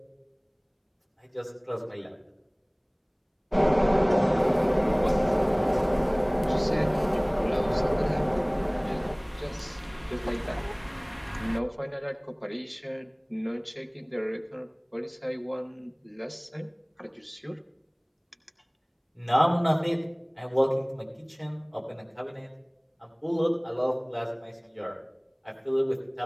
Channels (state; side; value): identical; both; correlation 1.00